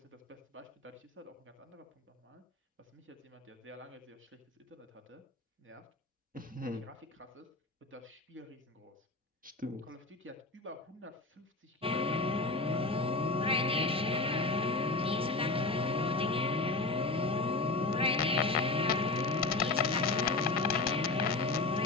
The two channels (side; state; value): right; quieter; 3.4 dB